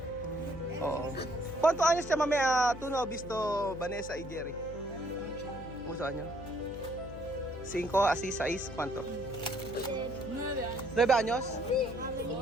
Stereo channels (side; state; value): left; noise; hum, 12 dB below the sound